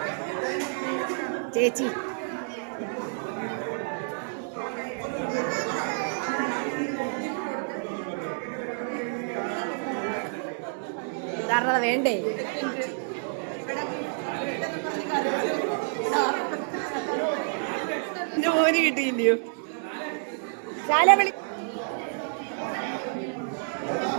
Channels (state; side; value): silent; left; digital silence